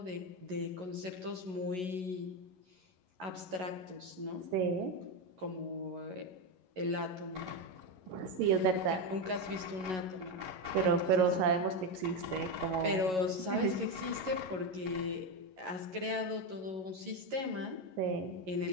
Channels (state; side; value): late; left; 11 ms